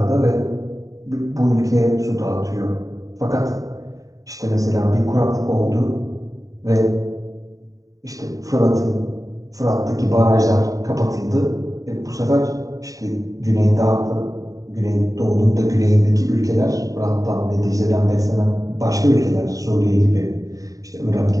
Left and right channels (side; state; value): left; late; 0.16 ms